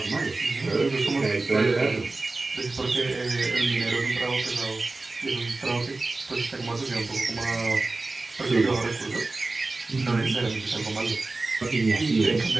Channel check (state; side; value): quieter; left; 3.4 dB